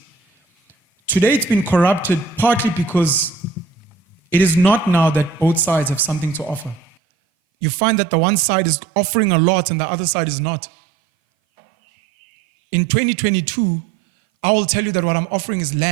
Today it's been corrupted partly because it is not now that both sides have something to offer. You find that the one side is offering a lot and the other side is not. In 2022, I will tell you that what I'm offering is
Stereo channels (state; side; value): drops out; left; at 7.0 s